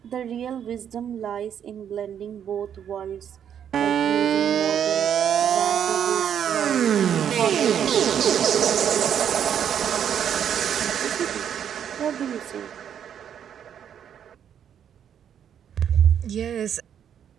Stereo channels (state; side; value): quieter; left; 8.9 dB